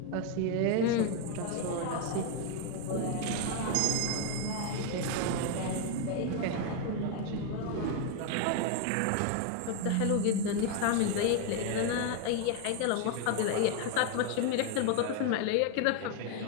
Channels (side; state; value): both; different; correlation 0.01